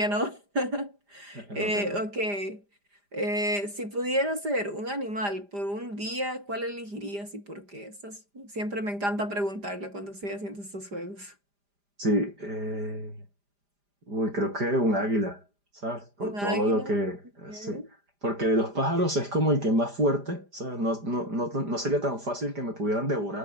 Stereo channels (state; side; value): late; left; 5.0 ms